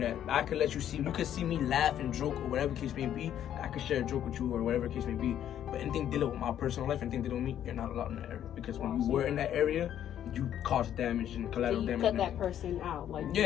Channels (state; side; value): quieter; right; 10.5 dB